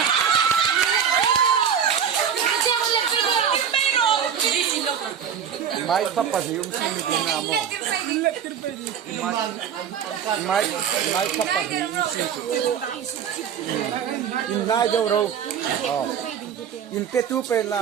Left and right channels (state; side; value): quieter; left; 8.1 dB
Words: Mai kapasium sini na mo. Mai kapasium sini. Inai jauh ro. Oh. In petu pe